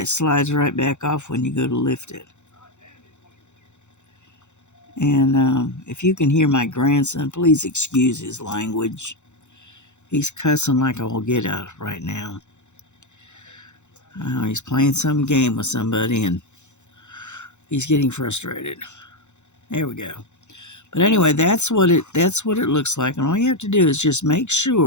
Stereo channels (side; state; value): right; late; 0.83 ms